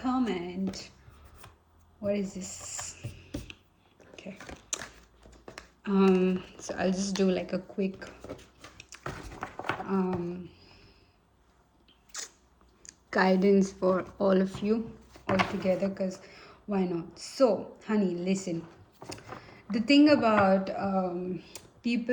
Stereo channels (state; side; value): identical; both; correlation 1.00